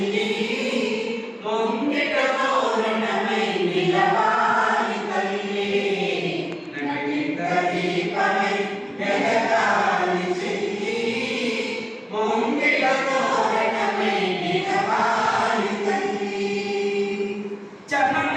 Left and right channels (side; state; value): both; identical; correlation 1.00